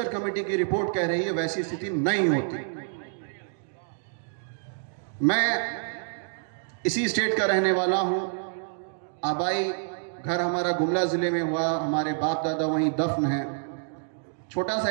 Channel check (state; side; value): silent; left; digital silence